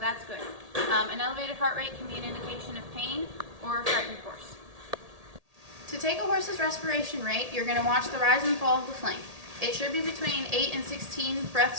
good. An elevated heart rate can be an indication of pain or a frightened horse. To take a horse's respiration rate, you're going to watch the rise and fall of the flank. It should be between 8 and 16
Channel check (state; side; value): late; left; 1.8 ms